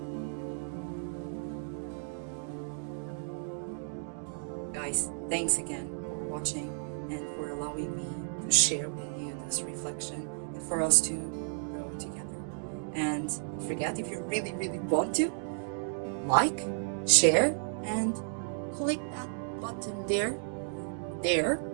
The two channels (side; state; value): left; silent; digital silence